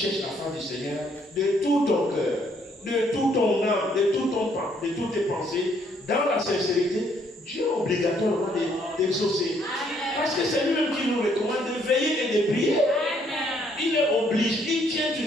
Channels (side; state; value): both; normal; correlation 0.68